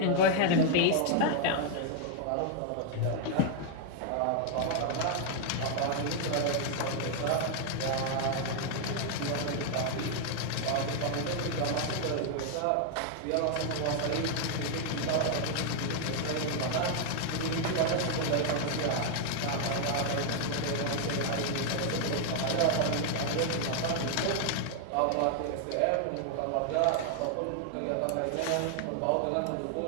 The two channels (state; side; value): different; both; correlation 0.00